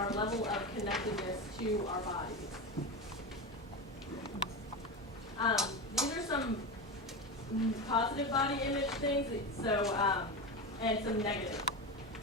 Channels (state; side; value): normal; both; correlation 0.20